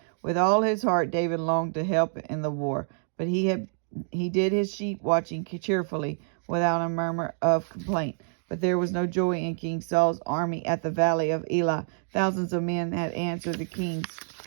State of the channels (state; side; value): silent; left; 60 dB below the other